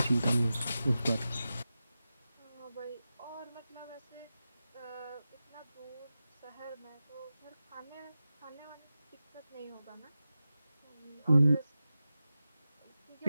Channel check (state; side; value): inverted; both; correlation -0.94